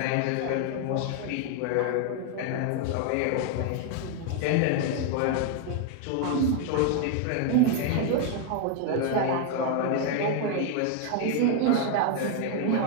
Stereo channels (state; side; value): different; both; correlation 0.00